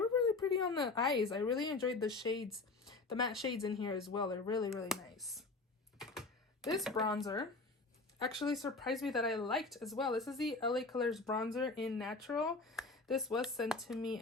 really pretty on the eyes. I really enjoyed the shades, the matte shades in here as well. They're really, really nice. This bronzer actually surprised me that I liked as well. This is the LA Colors bronzer in Natural. This was sent to me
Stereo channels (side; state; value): right; quieter; 3.6 dB